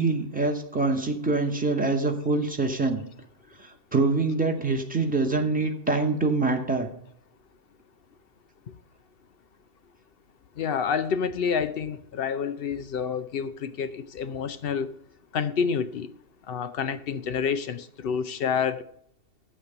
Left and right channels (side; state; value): right; late; 2.7 ms